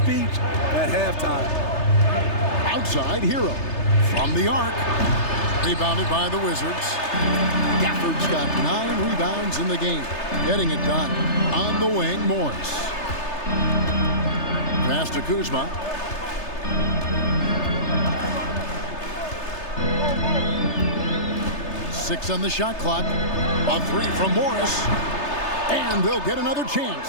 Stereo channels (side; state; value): right; late; 3.3 ms